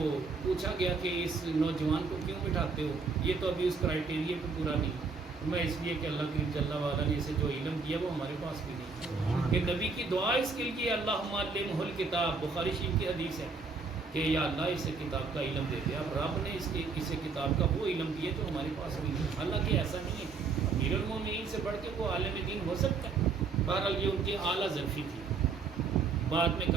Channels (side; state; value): left; quieter; 4.6 dB